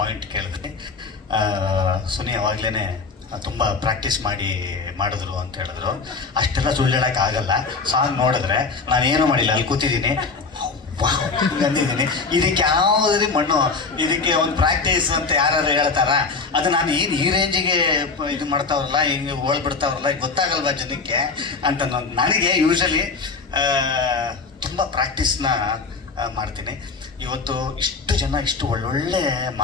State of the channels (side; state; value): right; quieter; 4.4 dB